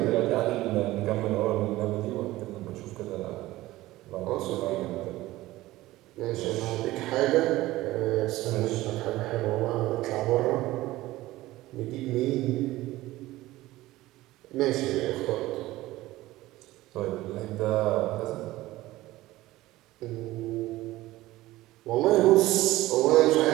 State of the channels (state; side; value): quieter; left; 17.3 dB